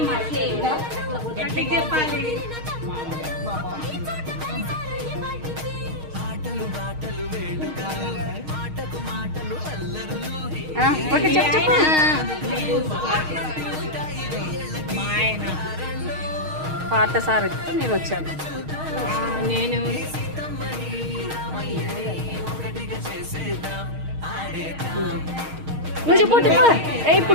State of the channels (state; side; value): late; left; 6.4 ms